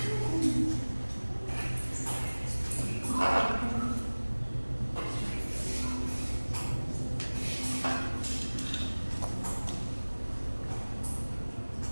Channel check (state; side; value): inverted; both; correlation -1.00